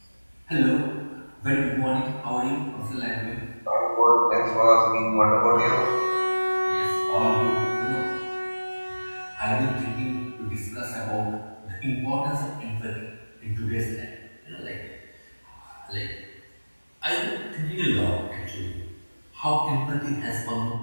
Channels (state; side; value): inverted; both; correlation -1.00